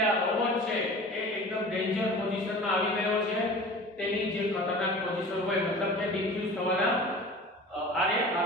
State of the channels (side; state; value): both; normal; correlation 0.39